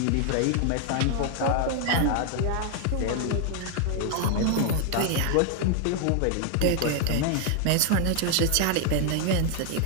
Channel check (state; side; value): different; both; correlation 0.00